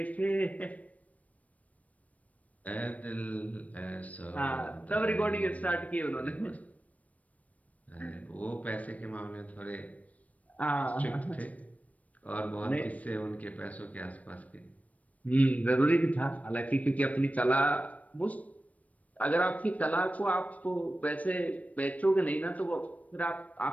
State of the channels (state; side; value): late; right; 0.068 ms